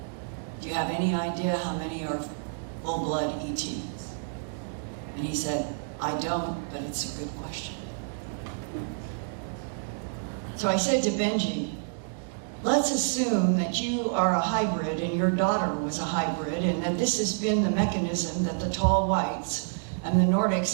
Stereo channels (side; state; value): left; silent; digital silence